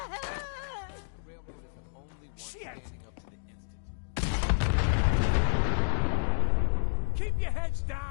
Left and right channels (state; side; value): silent; right; digital silence